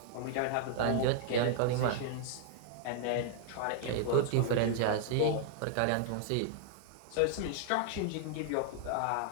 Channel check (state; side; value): different; both; correlation -0.01